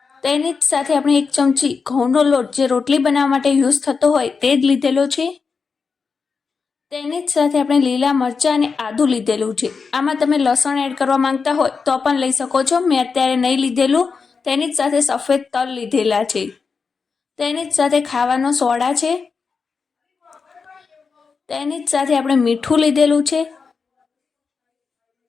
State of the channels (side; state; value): right; quieter; 5.1 dB